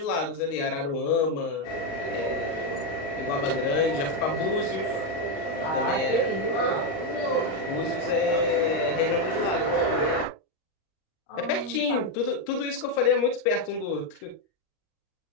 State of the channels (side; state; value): right; late; 39 ms